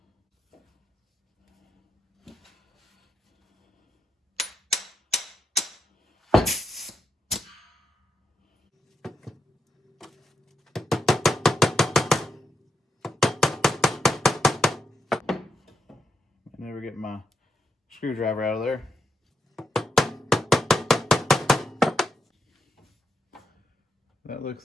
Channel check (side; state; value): both; normal; correlation 0.83